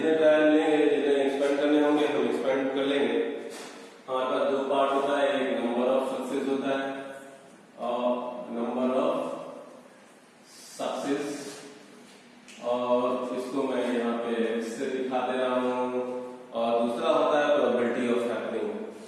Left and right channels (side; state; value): both; identical; correlation 1.00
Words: ट्रायल लेंगे, जितने एक्सपेंड करने होंगे हम एक्सपेंड कर लेंगे। हमारे पास दो पार्ट होता है, एक नंबर ऑफ सक्सेस होता है और नंबर ऑफ सक्सेस, और इसको मैं यहाँ पे इससे दिखा दे रहा हूँ। और दूसरा होता है प्रोबेबिलिटी ऑफ हैपनिंग,